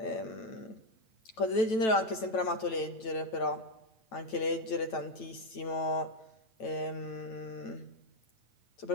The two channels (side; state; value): right; late; 9.1 ms